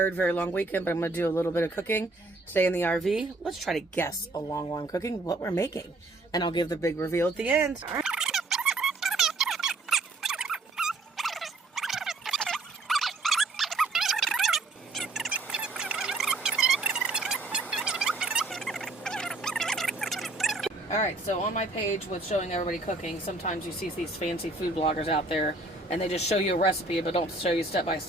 very long weekend, but I'm going to do a little bit of cooking today in the RV. Let's try to guess along while I'm cooking what we're making. And I'll give the big reveal at the end. All right. Alright, so on my page with showing everybody cooking, sometimes you see these fancy food bloggers out there and they just show you a recipe but don't show you step by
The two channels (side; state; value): left; quieter; 3.1 dB